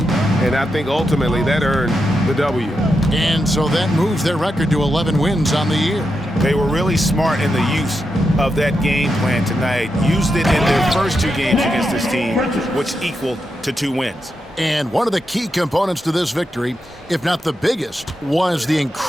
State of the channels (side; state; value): both; normal; correlation 0.86